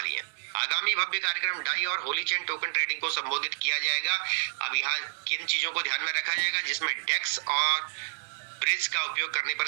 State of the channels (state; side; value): silent; left; digital silence